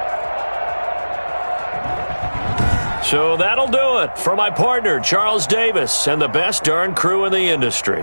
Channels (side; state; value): both; inverted; correlation -1.00